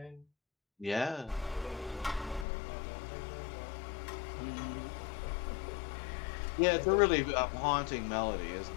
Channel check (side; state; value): right; drops out; at 2.5 s